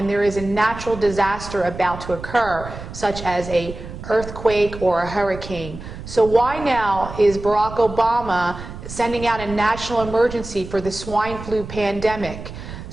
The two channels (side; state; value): right; noise; rumble, 11 dB below the sound